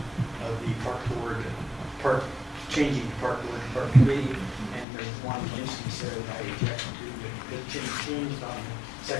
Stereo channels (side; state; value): right; drops out; at 4.9 s